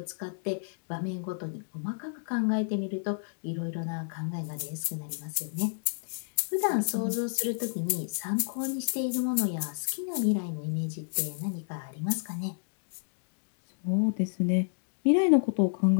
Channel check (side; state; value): right; silent; digital silence